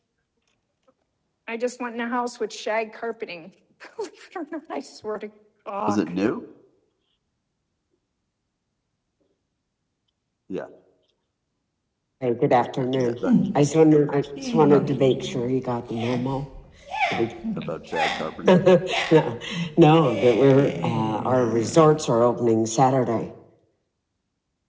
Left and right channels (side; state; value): both; identical; correlation 1.00